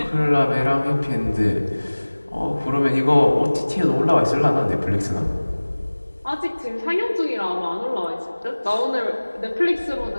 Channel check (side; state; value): both; inverted; correlation -1.00